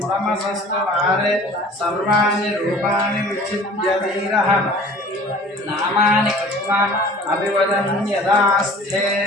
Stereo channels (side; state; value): both; normal; correlation 0.46